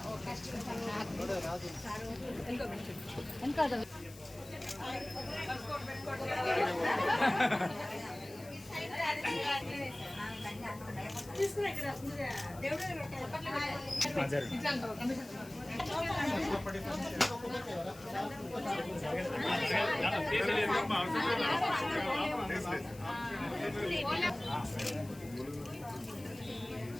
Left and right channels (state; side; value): noise; left; hiss, 20 dB below the sound